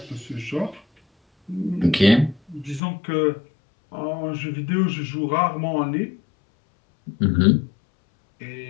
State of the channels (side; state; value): right; drops out; at 2.8 s